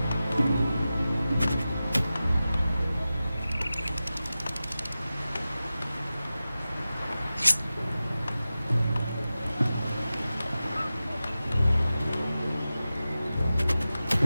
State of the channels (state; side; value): inverted; both; correlation -0.95